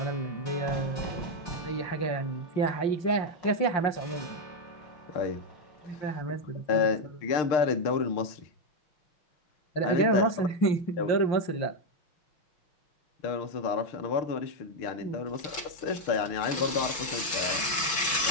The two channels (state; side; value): late; right; 6.1 ms